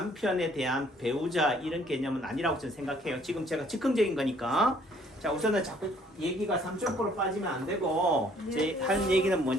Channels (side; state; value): both; normal; correlation 0.61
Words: 대한 배우자 이런 개념은 아니라고 저는 생각해요. 지금 제가 즉흥적인 거니까. 자, 우선은 자꾸 얘기가 3점포로 빠지면 안 되고 제 할 얘기는